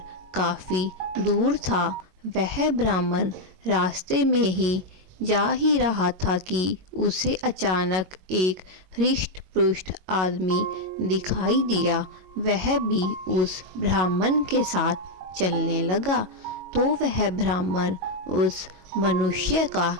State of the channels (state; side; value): late; left; 22 ms